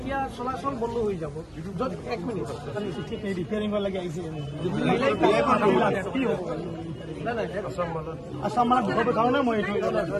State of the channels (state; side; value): identical; both; correlation 1.00